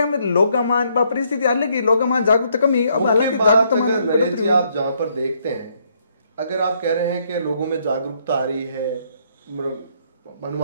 में लोग परिस्थिति अलग ही लोग जागरूकता कमी। अब हालांकि जागरूकता आप जहां पर देखते हैं अगर आप कह रहे हैं कि लोगों में जागरूकता आ रही है,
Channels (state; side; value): inverted; both; correlation -0.71